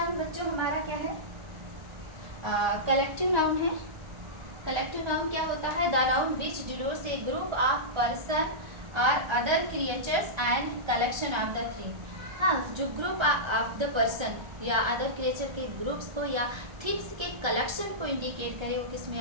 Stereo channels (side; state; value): left; late; 1.3 ms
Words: बच्चों हमारा क्या है, कलेक्टिव नाउन है। कलेक्टिव नाउन क्या होता है, the noun which denotes a group of person और other creatures and collection of the thing. हाँ, जो ग्रुप ऑफ द पर्सन या अदर क्रिएचर के ग्रुप्स को या थिंग्स के कलेक्शन को इंडिकेट करे, वो किस में